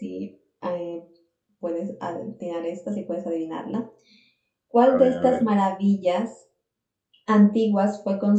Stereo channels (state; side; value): identical; both; correlation 1.00